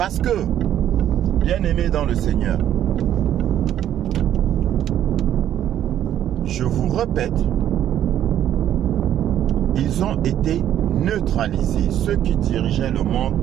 que, bien-aimés dans le Seigneur, je vous répète, ils ont été neutralisés. Ceux qui dirigeaient le monde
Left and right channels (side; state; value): left; quieter; 11.0 dB